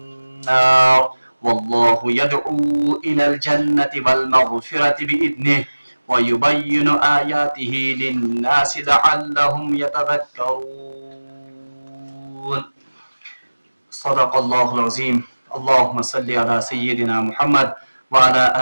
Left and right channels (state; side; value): inverted; both; correlation -1.00